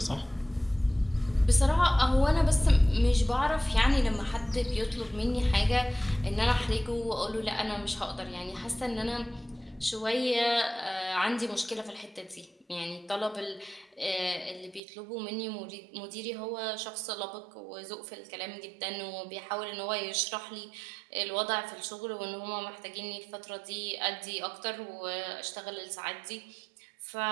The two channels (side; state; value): left; drops out; at 14.8 s